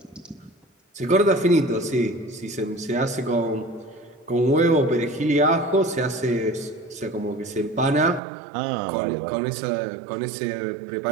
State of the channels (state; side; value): drops out; left; at 8.2 s